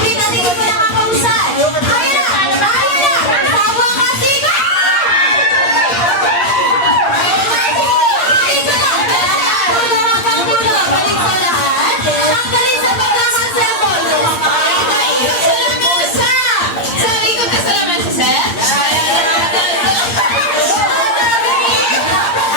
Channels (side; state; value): right; late; 8.6 ms